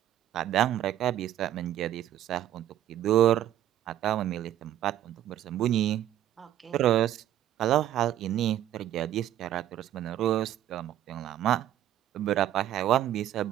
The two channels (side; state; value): left; quieter; 11.9 dB